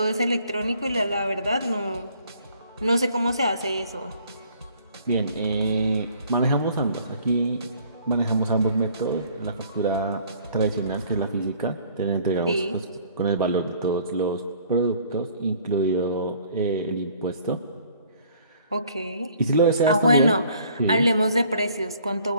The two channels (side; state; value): both; inverted; correlation -0.57